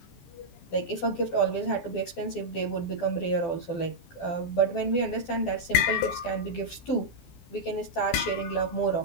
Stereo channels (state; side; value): late; right; 12 ms